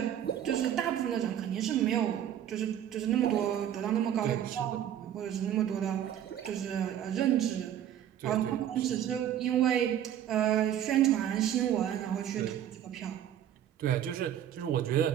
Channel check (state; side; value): quieter; left; 10.6 dB